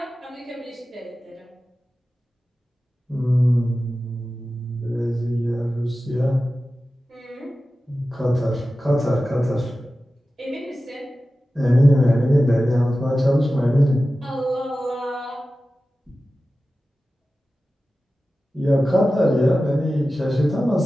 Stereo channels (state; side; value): normal; both; correlation 0.95